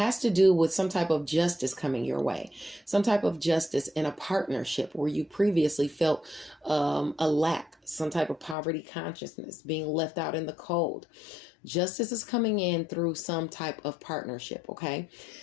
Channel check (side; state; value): right; drops out; at 8.6 s